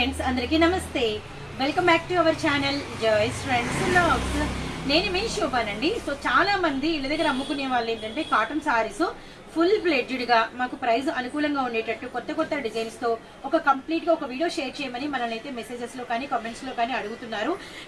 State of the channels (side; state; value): both; identical; correlation 1.00